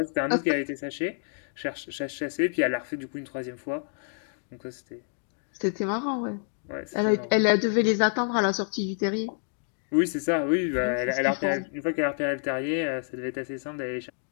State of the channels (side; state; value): right; silent; digital silence